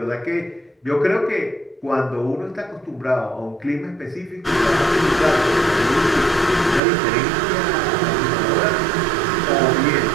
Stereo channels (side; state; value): left; drops out; at 6.8 s